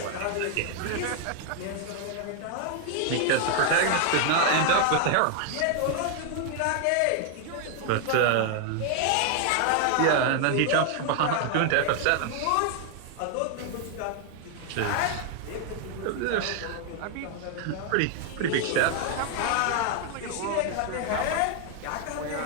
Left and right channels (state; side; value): different; both; correlation 0.00